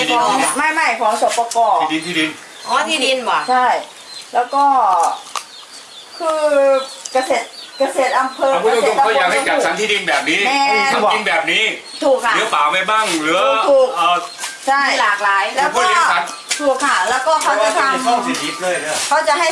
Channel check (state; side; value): identical; both; correlation 1.00